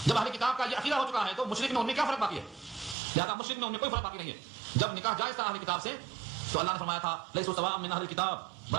جب اہل کتاب کا یہ عقیدہ ہو چکا ہے تو مشرک میں ان میں کیا فرق باقی ہے؟ لہذا مشرک میں ان میں کوئی فرق باقی نہیں ہے۔ جب نکاح جائز تھا اہل کتاب سے تو اللہ نے فرمایا تھا لیسوا سواء من اہل کتاب،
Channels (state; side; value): drops out; left; at 3.0 s